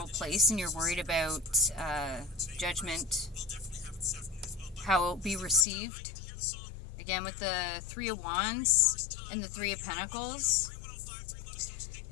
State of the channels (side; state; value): right; drops out; at 5.7 s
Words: place, and you're worried about judgment, how it will be received. Again, with the Three of Wands and the Three of Pentacles,